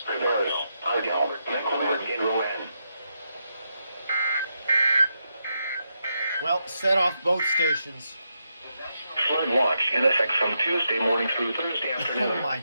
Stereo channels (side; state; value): both; inverted; correlation -0.83